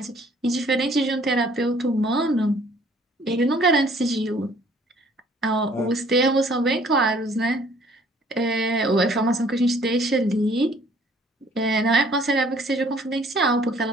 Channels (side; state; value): both; normal; correlation 0.58